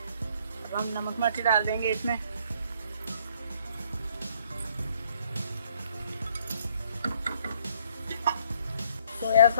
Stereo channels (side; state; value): both; inverted; correlation -0.64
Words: अब हम नमक मिर्च डाल देंगे इसमें। सोया